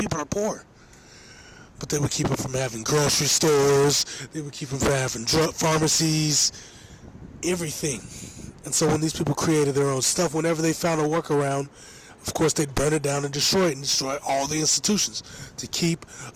are poor. But they would keep them from having grocery stores, they would keep them from having drug pharmacies, everything. And so when these people created their own stuff, whenever they found a workaround, of course they'd burn it down and destroy all the institutions to keep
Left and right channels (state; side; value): identical; both; correlation 1.00